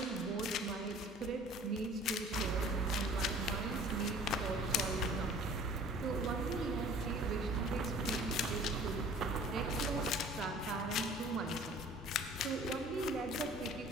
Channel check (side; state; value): both; normal; correlation 0.49